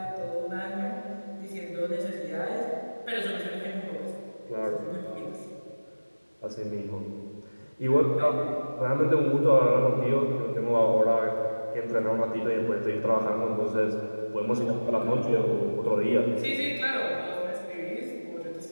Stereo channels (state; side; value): inverted; both; correlation -1.00